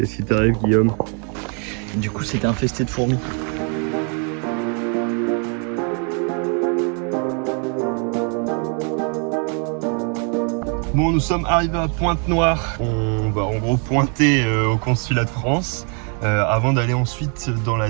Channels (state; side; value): quieter; left; 39.3 dB